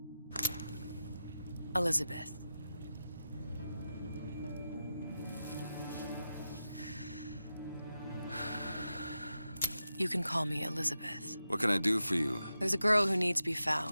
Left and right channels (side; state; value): both; inverted; correlation -0.90